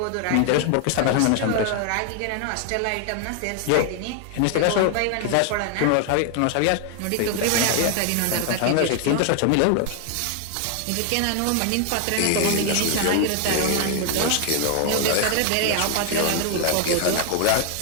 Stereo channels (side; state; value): both; different; correlation 0.00